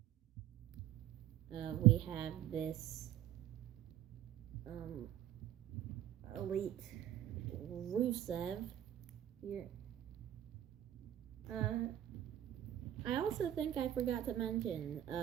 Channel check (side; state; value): left; quieter; 12.1 dB